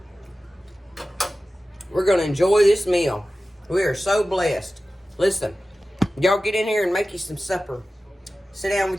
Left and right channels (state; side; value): normal; both; correlation 0.95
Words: We're going to enjoy this meal. We are so blessed. Listen, y'all get in here and make you some supper. Sit down